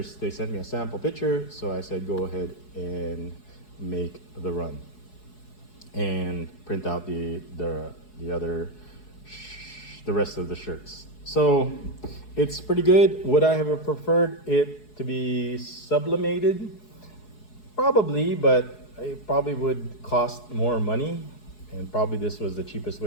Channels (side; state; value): right; late; 4.7 ms